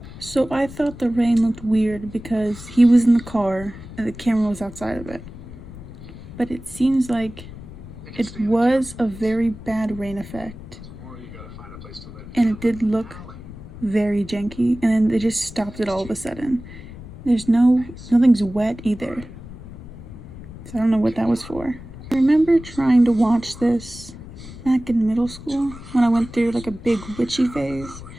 So I thought the rain looked weird because he was in the car and the camera was outside of it. But it seems like it was a very bad rain effect. And it did look very janky. And then they just stopped it all of a sudden. Nothing's wet either. So I don't know what that was for. I remember trying to watch this back in middle school when I went through like a big witchy phase.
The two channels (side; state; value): left; noise; rumble, 15 dB below the sound